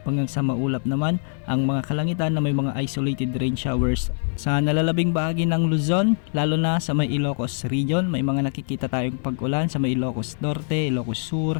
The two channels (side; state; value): right; silent; 60 dB below the other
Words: hanggang sa maulap naman ang mga kalangitan na may mga isolated rain showers. Sa nalalabing bahagi ng Luzon, lalo na sa may Ilocos region, may mga nakikita tayong pag-ulan sa may Ilocos Norte, Ilocos